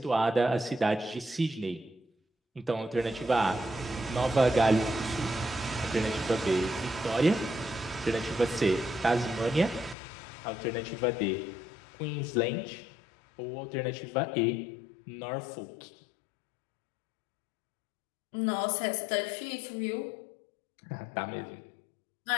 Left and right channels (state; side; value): drops out; right; at 10.0 s